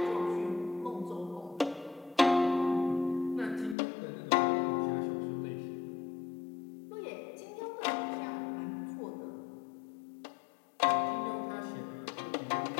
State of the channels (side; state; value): right; drops out; at 3.8 s